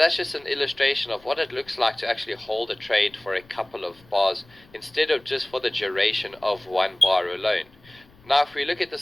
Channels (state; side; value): noise; left; rumble, 27 dB below the sound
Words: just an illustration of what it looks like to actually hold a trade for a couple of bars instead of just for the duration of one bar alone. Now if we look at